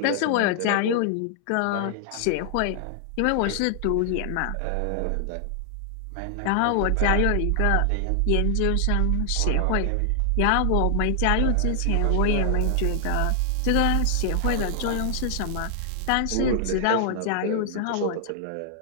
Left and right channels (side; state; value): both; different; correlation 0.00